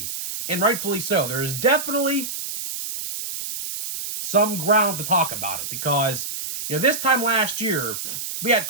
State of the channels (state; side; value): noise; right; hiss, 6 dB below the sound